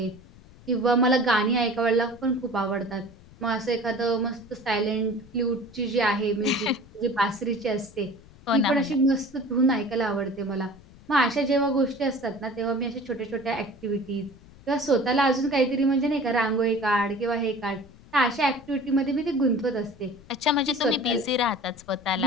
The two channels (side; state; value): left; noise; rumble, 23 dB below the sound